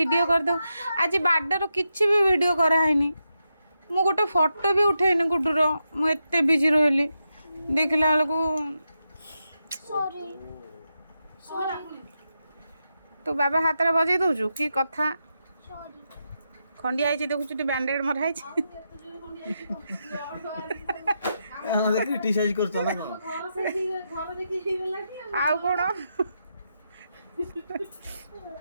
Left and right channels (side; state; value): both; inverted; correlation -0.86